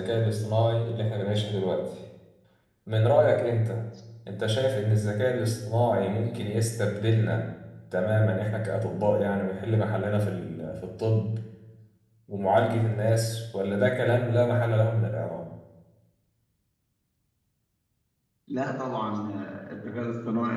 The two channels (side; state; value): both; identical; correlation 1.00